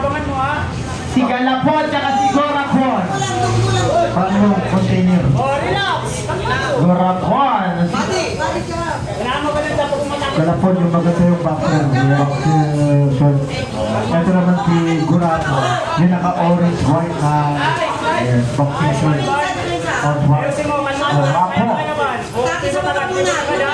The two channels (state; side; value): identical; both; correlation 1.00